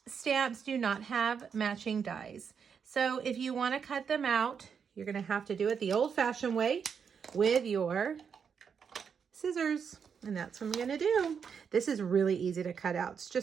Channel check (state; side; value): quieter; left; 6.7 dB